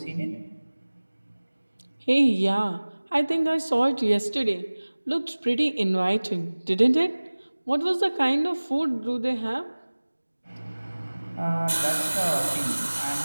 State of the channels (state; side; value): inverted; both; correlation -1.00